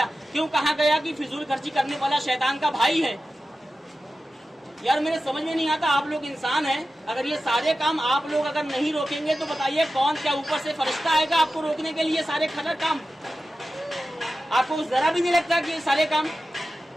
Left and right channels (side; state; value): both; normal; correlation 0.94